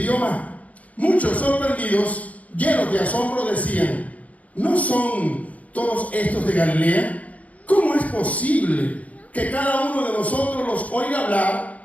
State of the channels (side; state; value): right; late; 0.070 ms